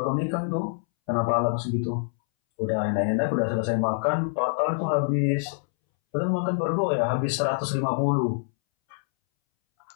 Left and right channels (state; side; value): silent; right; 61 dB below the other